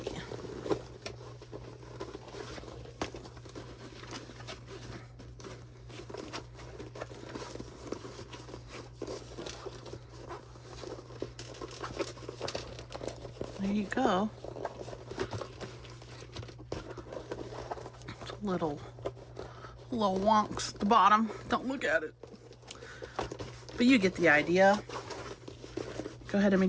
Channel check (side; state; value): both; identical; correlation 1.00